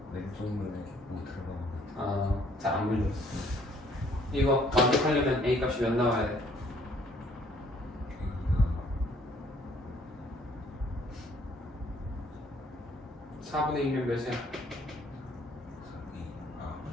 왼쪽 눈에 못 들어가. 잘 안 보이었어. 이거 완벽하려면 a 값이 몇 나와야 돼? A가 4분의 1이면 몇이야?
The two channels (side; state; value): both; normal; correlation 0.62